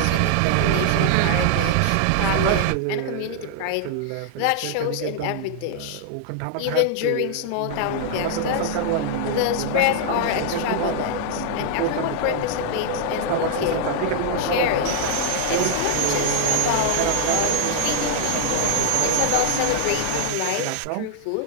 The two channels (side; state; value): both; different; correlation 0.00